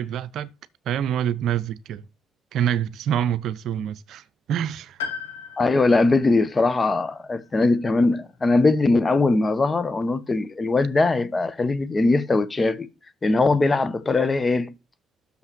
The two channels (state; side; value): normal; both; correlation 0.86